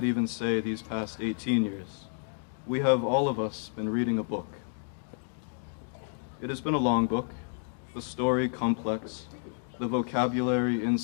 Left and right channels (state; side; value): silent; right; 58 dB below the other